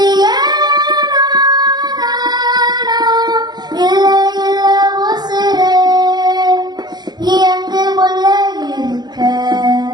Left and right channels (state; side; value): late; left; 0.20 ms